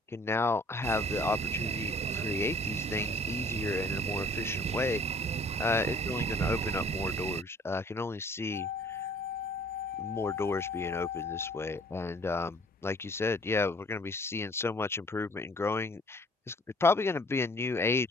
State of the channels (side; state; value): both; normal; correlation 0.54